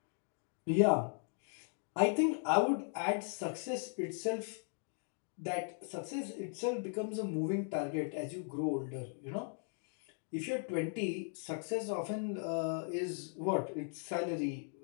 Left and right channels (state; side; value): silent; right; 53 dB below the other